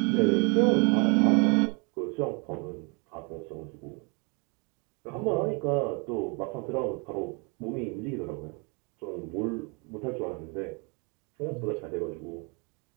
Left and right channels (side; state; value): left; quieter; 32.5 dB